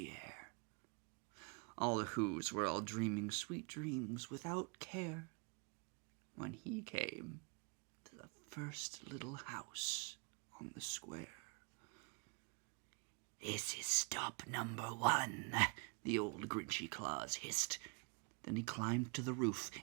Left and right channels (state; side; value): quieter; left; 35.1 dB